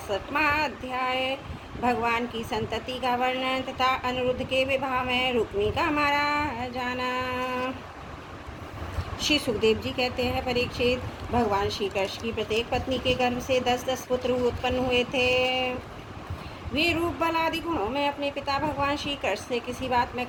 अध्याय। भगवान की संतति का वर्णन तथा अनिरुद्ध के विवाह में रुक्मी का मारा जाना। श्री सुखदेव जी कहते हैं, परीक्षित, भगवान श्री कृष्ण की प्रत्येक पत्नी के गर्भ से 10-10 पुत्र उत्पन्न हुए थे। वे रूप बल आदि गुणों में अपने पिता भगवान श्री कृष्ण से किसी बात में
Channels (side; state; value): both; identical; correlation 1.00